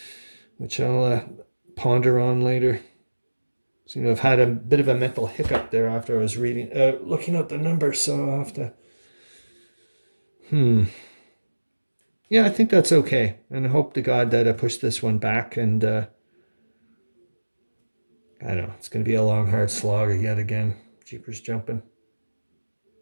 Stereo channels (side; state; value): both; inverted; correlation -1.00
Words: which I'll ponder on later. Seem to have had a bit of a mental hiccup there after I was looking at the numbers. So I'll have to. Yeah, I think that's okay, and I hope to God that I push this one back. And I don't know, it's going to be a long, hard slog yet again. Jeepers jumping.